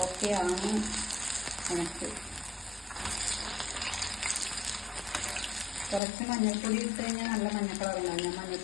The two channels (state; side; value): drops out; right; at 6.0 s